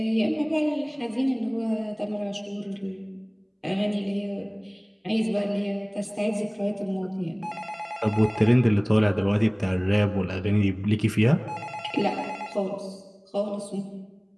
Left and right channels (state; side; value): identical; both; correlation 1.00